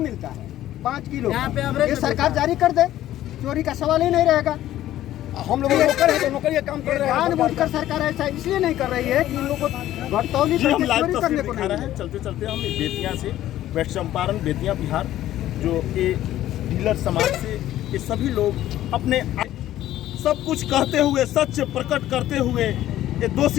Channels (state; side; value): quieter; right; 13.5 dB